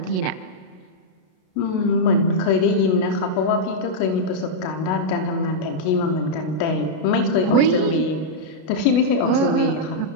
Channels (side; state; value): right; late; 33 ms